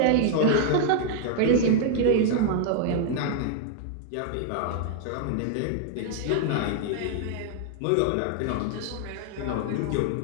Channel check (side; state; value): both; different; correlation 0.00